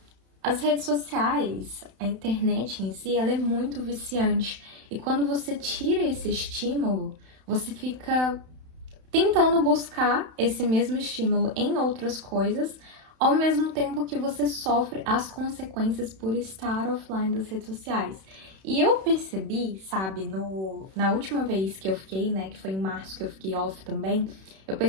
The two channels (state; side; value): late; left; 31 ms